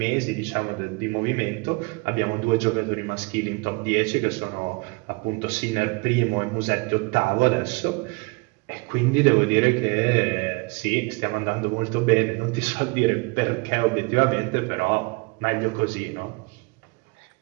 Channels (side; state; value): left; quieter; 28.2 dB